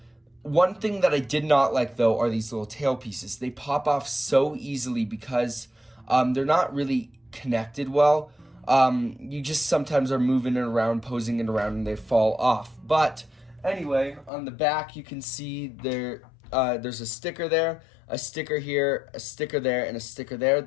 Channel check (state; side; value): drops out; right; at 14.3 s